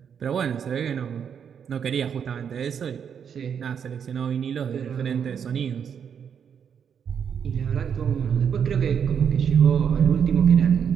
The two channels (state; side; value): quieter; left; 7.6 dB